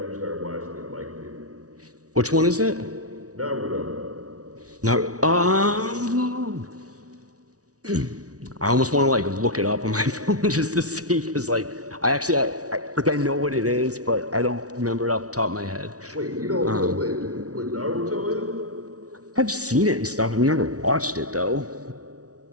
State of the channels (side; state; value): left; late; 0.67 ms